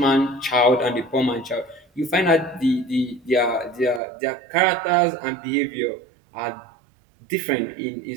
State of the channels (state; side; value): drops out; left; at 4.0 s